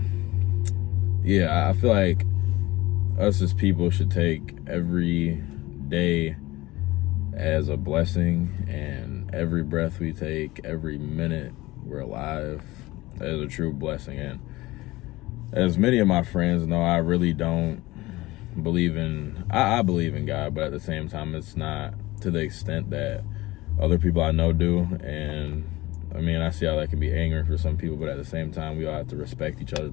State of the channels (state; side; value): quieter; right; 19.5 dB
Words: Yeah, I feel like us as people should take every day as a blessing, and every breath we take, every minute we're alive, as a true blessing. And as many of my friends know, I really don't believe in, I believe in God, but at the same time, it's not to the extent that other people I know do. And I see how that can be angering for some people, but at the same time, we all have to respect each other's